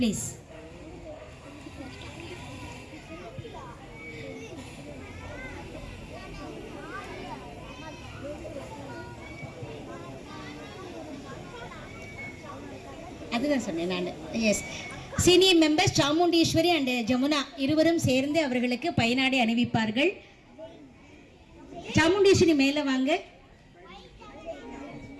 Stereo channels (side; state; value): both; identical; correlation 1.00